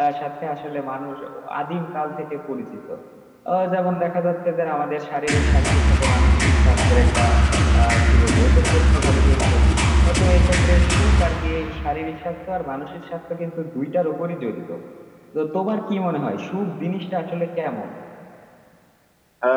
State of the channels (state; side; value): identical; both; correlation 1.00